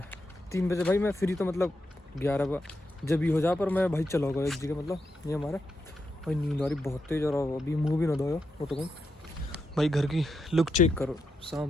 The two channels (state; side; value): normal; both; correlation 0.84